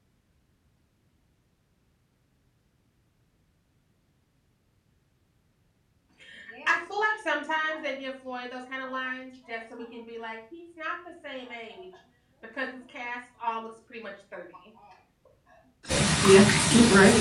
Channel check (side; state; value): both; identical; correlation 1.00